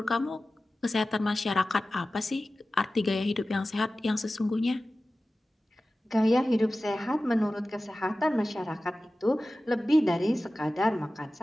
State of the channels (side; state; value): both; normal; correlation 0.96